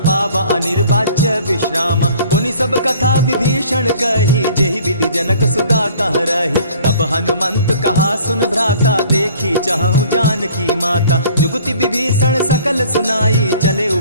पावा अनिर्वाच्य विश्रामा। पुनि सब कथा विभीषण कही, जेहि विधि जनक सुता तह रही। तब हनुमंत कहा सुन भ्राता, देखी चाहूँ जानकी माता। जुगति विभीषण सकल सुनाई, चले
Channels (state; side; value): inverted; both; correlation -0.52